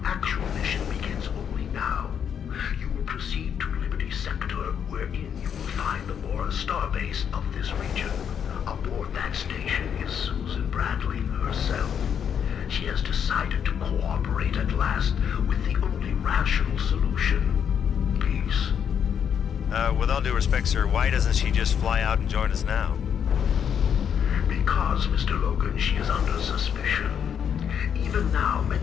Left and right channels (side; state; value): right; quieter; 8.1 dB